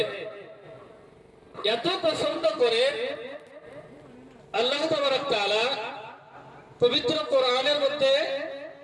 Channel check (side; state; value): both; identical; correlation 1.00